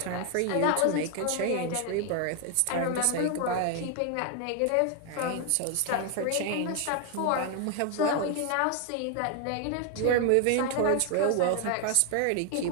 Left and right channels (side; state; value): both; different; correlation 0.00